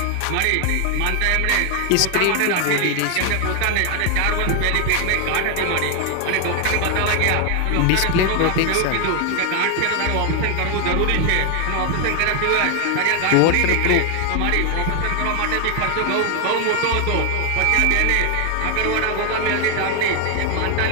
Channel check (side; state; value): both; different; correlation 0.00